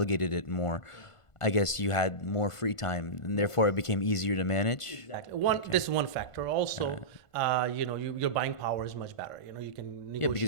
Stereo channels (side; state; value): right; late; 1.5 ms